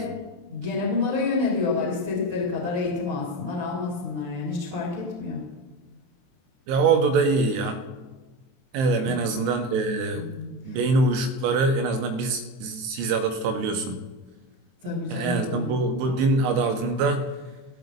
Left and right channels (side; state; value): left; late; 23 ms